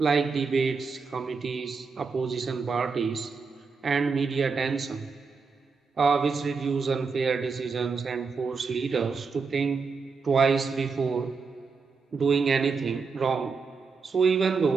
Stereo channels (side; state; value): left; quieter; 4.9 dB